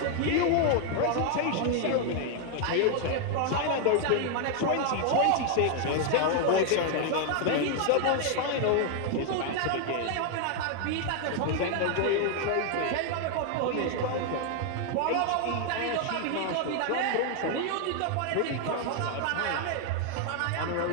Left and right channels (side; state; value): both; different; correlation 0.00